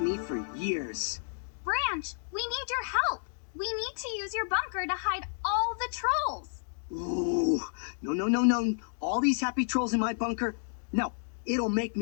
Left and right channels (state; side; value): silent; right; digital silence